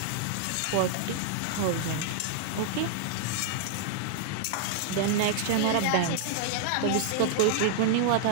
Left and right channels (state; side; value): different; both; correlation -0.01